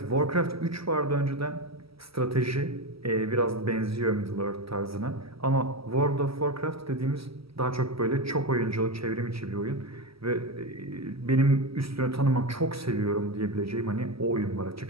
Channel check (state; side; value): late; left; 0.76 ms